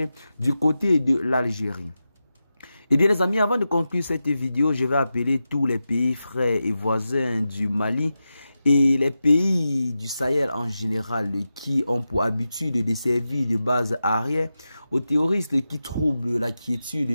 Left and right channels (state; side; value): inverted; both; correlation -0.92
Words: du côté de l'Algérie. Eh bien les amis, avant de conclure cette vidéo, je vais appeler tous les pays frères et voisins du Mali et les pays du Sahel en général qui ont pour habitude de servir de base arrière aux terroristes qui troublent la